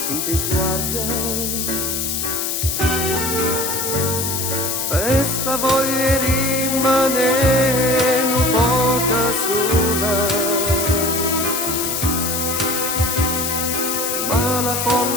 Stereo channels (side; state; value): left; noise; hiss, 1 dB below the sound